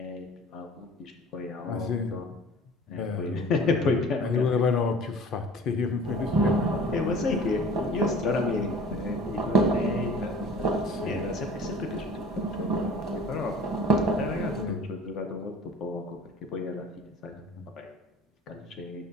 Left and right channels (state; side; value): normal; both; correlation 0.45